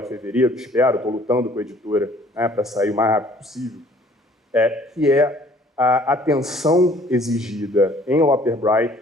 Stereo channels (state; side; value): normal; both; correlation 0.56